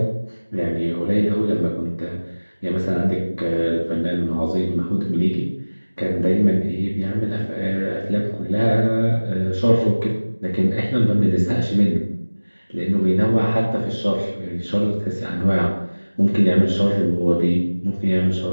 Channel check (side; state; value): both; inverted; correlation -1.00